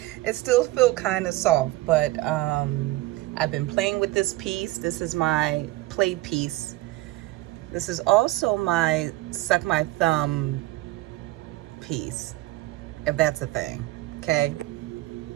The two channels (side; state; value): left; quieter; 18.3 dB